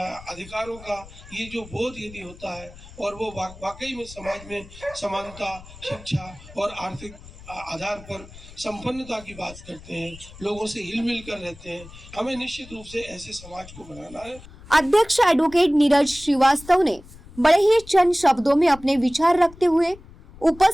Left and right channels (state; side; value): noise; left; rumble, 19 dB below the sound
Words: का ये जो बोध यदि होता है और वो वाकई में समाज में समानता, शिक्षा और आर्थिक आधार पर संपन्नता की बात करते हैं, लोगों से हिल मिल कर रहते हैं। हमें निश्चित रूप से ऐसे समाज को बनाना है। अध्यक्ष एडवोकेट नीरज श्रीवास्तव ने बड़े ही चंद शब्दों में अपने विचार रखते हुए